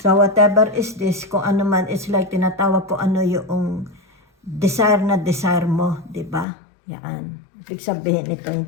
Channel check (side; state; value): right; drops out; at 6.5 s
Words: whatever is this, kung ano man, it's like tinatawag ko ano yung desire na desire mo, di ba? Yan. Ibig sabihin ito